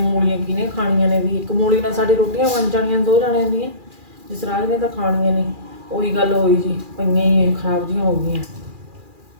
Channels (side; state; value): left; late; 2.4 ms